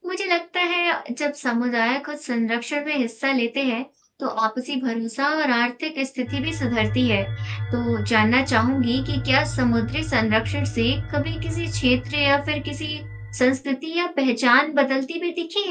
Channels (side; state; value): both; identical; correlation 1.00